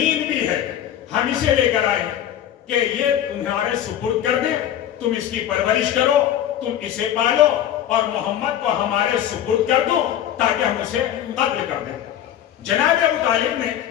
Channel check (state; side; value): quieter; right; 10.9 dB